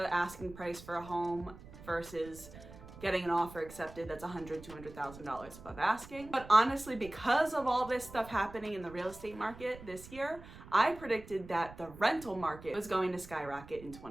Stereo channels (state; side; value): noise; right; rumble, 17 dB below the sound